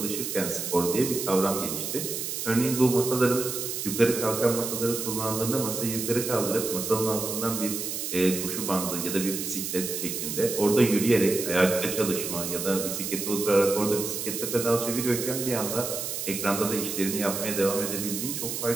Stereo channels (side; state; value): right; noise; hiss, 4 dB below the sound